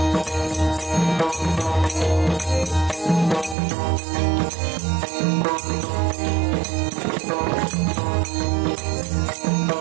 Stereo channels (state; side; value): drops out; left; at 3.6 s